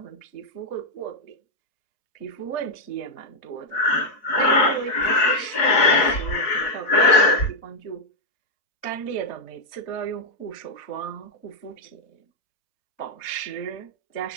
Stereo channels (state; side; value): late; right; 4.0 ms